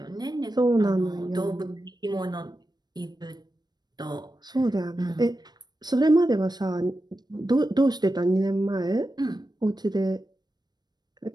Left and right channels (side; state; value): left; late; 0.20 ms